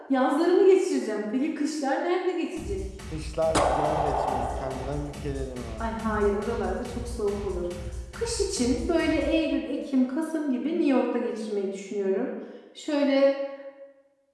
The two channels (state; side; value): identical; both; correlation 1.00